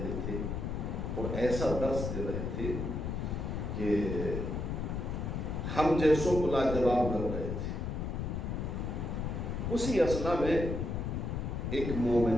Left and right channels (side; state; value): left; noise; rumble, 2 dB below the sound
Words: تھے اور ایسا درس دے رہے تھے کہ ہم جیسوں کو لاجواب کر رہے تھے. اسی اثنا میں ایک